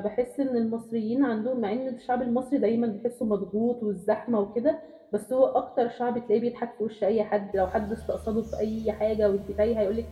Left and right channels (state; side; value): identical; both; correlation 1.00